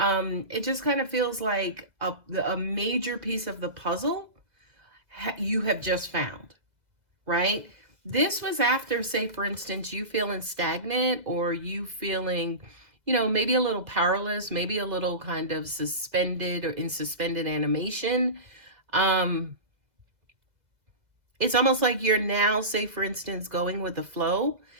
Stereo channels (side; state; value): left; late; 2.0 ms